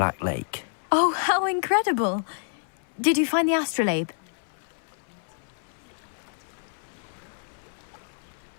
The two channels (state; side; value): silent; right; 59 dB below the other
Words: Lake. Oh, how incredible! Did you find the astrolabe?